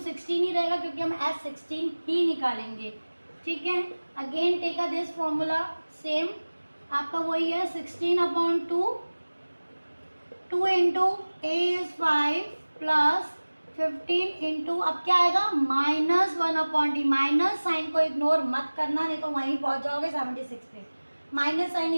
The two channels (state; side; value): inverted; both; correlation -1.00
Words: ही रहेगा क्योंकि हम S16 ही निकालेंगे, ठीक है। Again take a this formula, same आपका वही है 16/2, 2 into a is 5 plus 15 into, अब क्या आएगा माइनस 1/d। माइनस साइन को इग्नोर मत करना, नहीं तो वहीं पहुंच जाओगे 76 पे। माइनस साइन